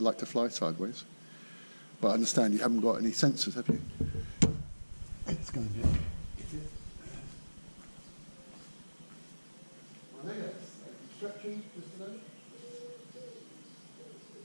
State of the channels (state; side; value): inverted; both; correlation -1.00